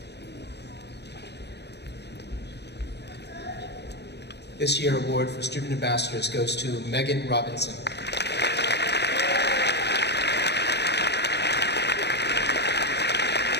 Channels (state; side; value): late; right; 0.49 ms